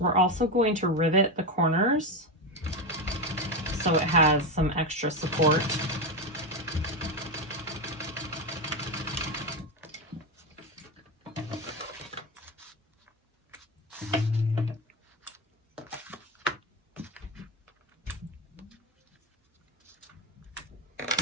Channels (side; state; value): both; normal; correlation 0.14